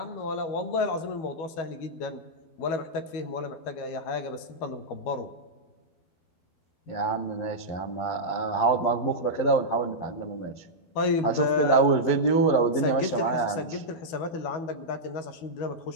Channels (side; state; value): right; late; 12 ms